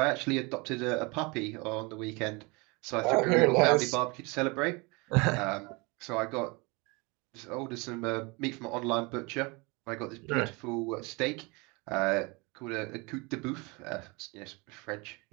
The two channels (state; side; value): quieter; left; 27.5 dB